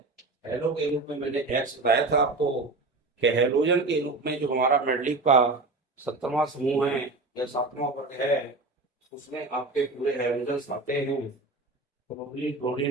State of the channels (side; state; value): left; quieter; 3.3 dB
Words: हेलो के रूप में मैंने एक्स बताया था आपको कि हेलोजन के रूप में जो हमारा मेंडलीव का 17वां समूह है या 7वां वर्ग है, उसमें आपके पूरे हेलोजन आते हैं। Chlorine,